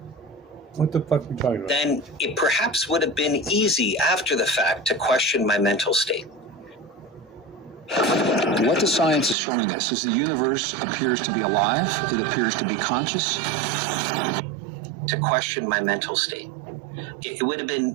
What the fuck are we talking about? Then it perhaps would have been easy after the fact to question my mental state. What the science is showing us is the universe appears to be alive. It appears to be conscious. To question my mental state. It would have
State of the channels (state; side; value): drops out; left; at 9.3 s